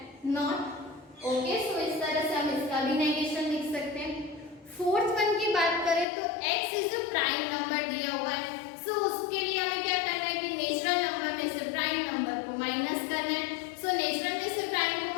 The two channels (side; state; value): right; drops out; at 6.1 s